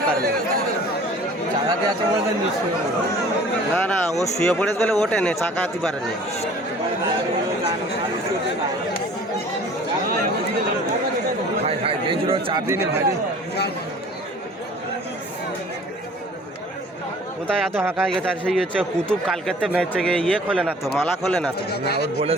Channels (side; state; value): both; normal; correlation 0.48